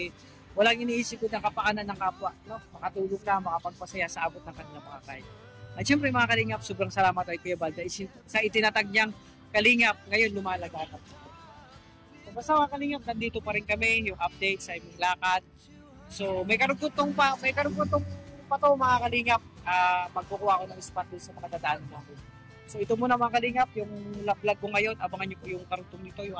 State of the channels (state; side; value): identical; both; correlation 1.00